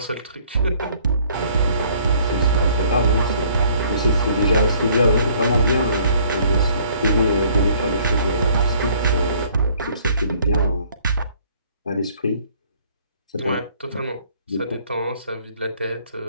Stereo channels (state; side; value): inverted; both; correlation -0.59